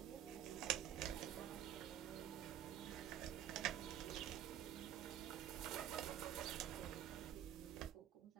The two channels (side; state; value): left; quieter; 10.9 dB